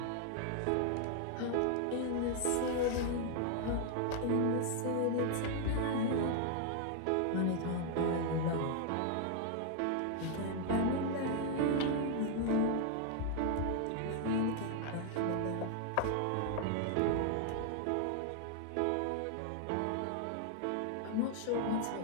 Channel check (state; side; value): different; both; correlation 0.00